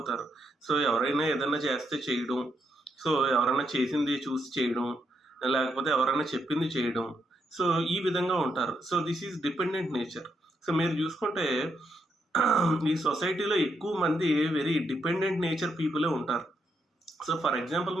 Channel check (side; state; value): both; normal; correlation 0.79